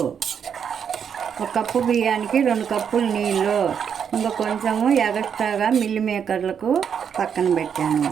1 కప్పు బియ్యానికి 2 కప్పులు నీళ్ళు. ఇంకా కొంచెము ఎగస్ట్రాగా మిల్ మేకర్లకు పక్కన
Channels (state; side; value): quieter; left; 7.6 dB